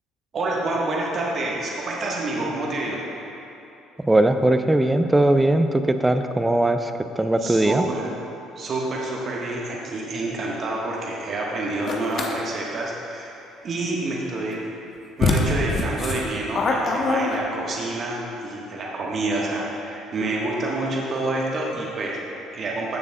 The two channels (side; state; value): both; normal; correlation 0.79